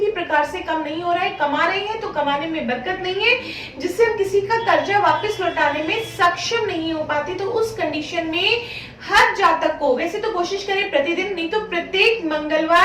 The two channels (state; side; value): identical; both; correlation 1.00